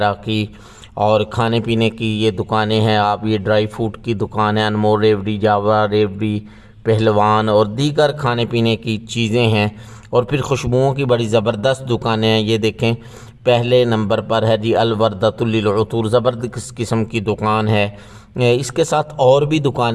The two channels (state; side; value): identical; both; correlation 1.00